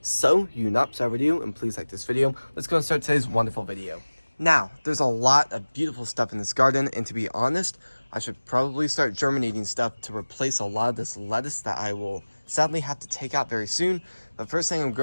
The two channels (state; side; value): inverted; both; correlation -1.00